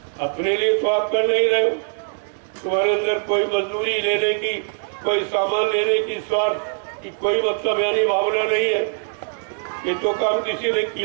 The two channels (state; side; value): silent; left; digital silence